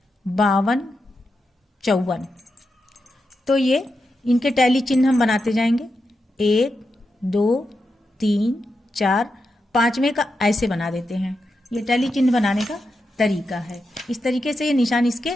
52, 54। तो ये इनके टैली चिन्ह हम बनाते जाएंगे, 1, 2, 3, 4, 5वें का ऐसे बना देते हैं। ये टैली चिन्ह बनाने का तरीका है। इस तरीके से ये निशान इसके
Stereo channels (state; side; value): normal; both; correlation 0.87